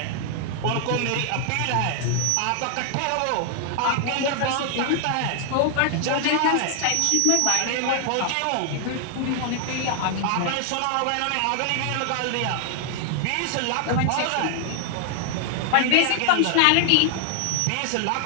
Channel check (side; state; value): both; different; correlation 0.00